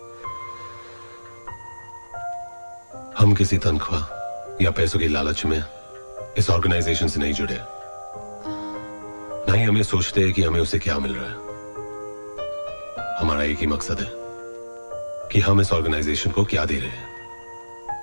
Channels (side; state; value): both; inverted; correlation -1.00